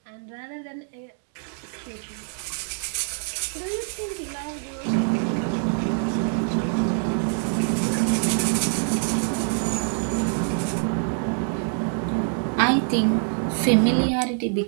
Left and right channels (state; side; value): silent; left; 55 dB below the other